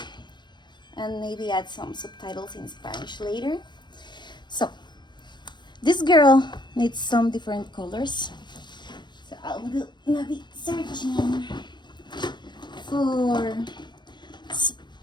and maybe add some subtitles in Spanish later. So this girl needs some different colors. So I'm gonna be searching for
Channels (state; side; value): late; right; 0.22 ms